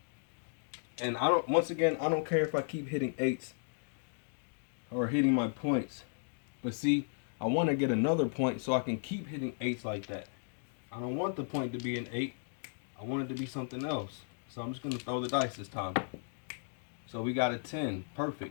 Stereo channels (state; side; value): silent; right; digital silence